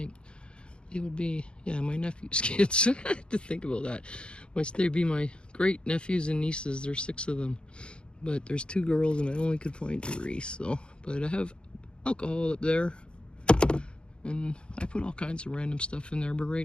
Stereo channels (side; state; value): right; late; 0.054 ms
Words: nephew's kids. I have to think about that. They'd be my great nephews and nieces. There's 6 of them, but there's 2 girls and I only could find 3. So, but I have alcohol up there, and I put all kinds of random stuff in there. But